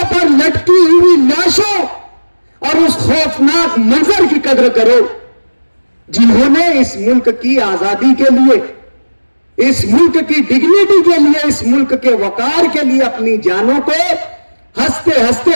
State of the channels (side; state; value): both; inverted; correlation -1.00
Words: पर लटकी हुई लाशों और उस खौफनाक मंजर की कदर करो, जिन्होंने इस मुल्क की आजादी के लिए, इस मुल्क की डिग्निटी के लिए, इस मुल्क के वकार के लिए अपनी जानों को हंसते हंसते